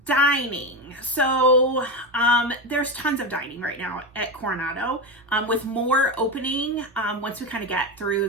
Dining. So there's tons of dining right now at Coronado, with more opening once we kind of get through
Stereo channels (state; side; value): normal; both; correlation 0.16